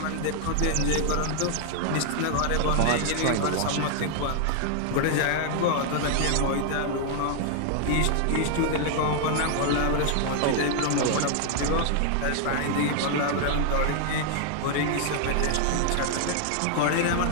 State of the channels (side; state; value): both; different; correlation 0.00